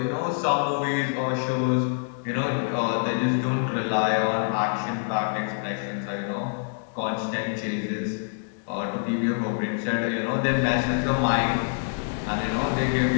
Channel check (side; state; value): right; silent; digital silence